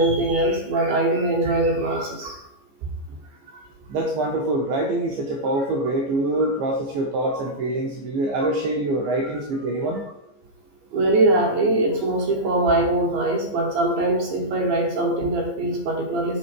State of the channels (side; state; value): left; late; 15 ms